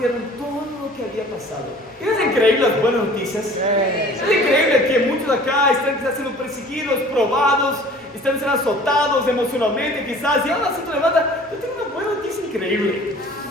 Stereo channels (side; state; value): both; normal; correlation 0.48